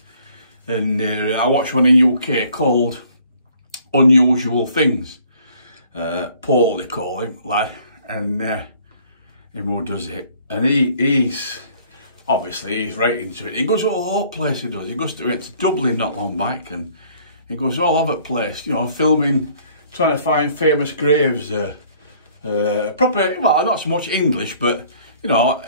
And I watched one in UK called Unusual Things. Paul, they call him, lad, and him who does it. And he's right into it. He goes all over the place, he does. He goes to Dublin not long back, and he goes all over the place, you know, filming, trying to find famous graves. Proper, well, not so much English, but, you know,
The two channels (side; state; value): both; inverted; correlation -0.57